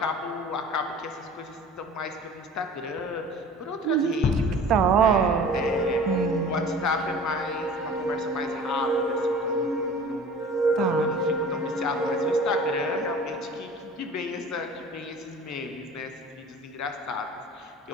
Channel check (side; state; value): both; normal; correlation 0.43